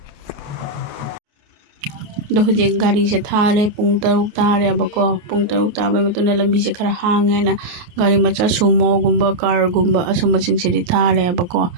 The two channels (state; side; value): late; left; 28 ms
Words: ꯑꯗꯣ ꯍꯧꯖꯤꯛ ꯒꯥꯔꯤꯁꯦ ꯊꯥꯔꯦ ꯄꯨꯡ 6 ꯇꯥꯔꯦꯕꯀꯣ ꯄꯨꯡ 6 ꯇꯥꯕꯩ ꯃꯇꯨꯡꯗ ꯂꯝꯕꯤꯁꯦ ꯈꯔ ꯍꯥꯡꯉꯦꯅ ꯒꯥꯔꯤ ꯃꯆꯥ ꯁꯨꯃꯣꯒꯨꯝꯕ ꯀꯥꯔꯒꯨꯝꯕ ꯑꯁꯨꯝꯕꯁꯤꯡꯁꯤꯗꯤ ꯊꯥꯔꯦꯕꯀꯣ